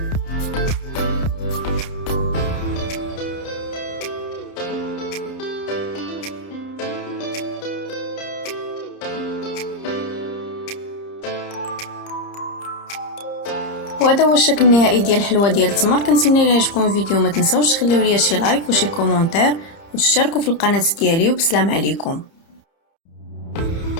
وهذا هو الشكل النهائي ديال الحلوه ديال التمر. كنتمنى الى عجبكم الفيديو ما تنساوش تخليو لي شي لايك وشي كومونتير وتشتركوا في القناه ديالي، وبسلام عليكم.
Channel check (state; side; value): late; right; 30 ms